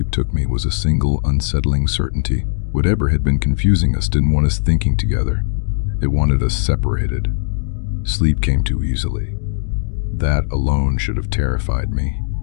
took me was a single, unsettling certainty. Whatever had been confusing us didn't want us thinking together. It wanted us separated. Sleep came too easily. That alone should have terrified me.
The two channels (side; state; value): right; silent; 64 dB below the other